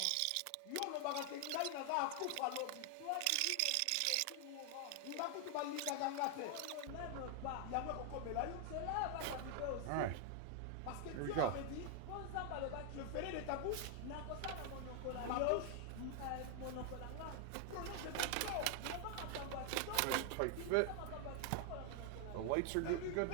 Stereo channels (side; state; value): both; different; correlation 0.00